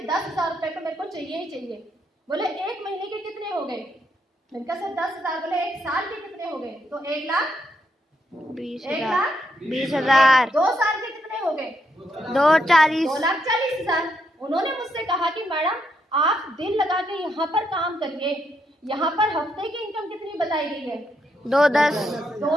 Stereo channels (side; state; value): both; normal; correlation 0.78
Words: 10,000 रुपए तो मेरे को चाहिए ही चाहिए। बोले 1 महीने के कितने हो गए? मैंने कहा सर 10,000। बोले 1 साल के कितने हो गए? तो 1,20,000 2 साल के कितने हो गए? 2,40,000 उन्होंने मुझसे कहा कि मैडम आप दिल लगा के यहाँ पर काम करिए, यहाँ पर हफ्ते की इनकम कितनी बताई गई है?